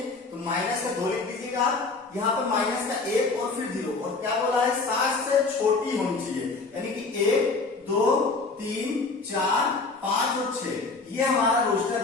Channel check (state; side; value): quieter; right; 3.9 dB